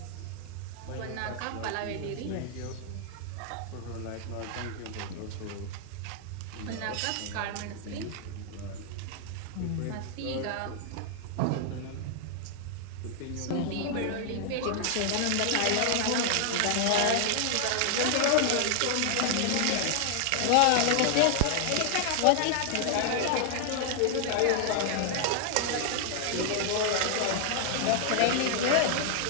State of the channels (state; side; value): different; both; correlation 0.00